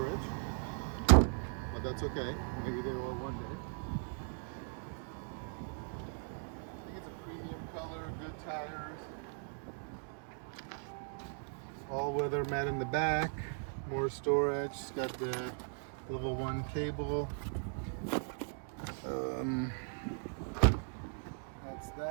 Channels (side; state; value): left; silent; 52 dB below the other